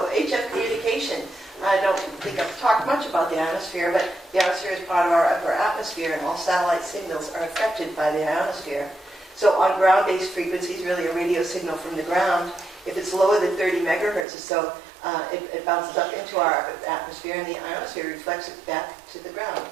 HF communication. I don't think I've talked much about the ionosphere, but the ionosphere is part of our upper atmosphere, and all satellite signals are affected by the ionosphere. So on ground-based frequencies, really a radio signal from the ground, if it's lower than 30 megahertz or so, it bounces up into our atmosphere, and the ionosphere reflects it back to the ground,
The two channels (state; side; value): drops out; left; at 14.2 s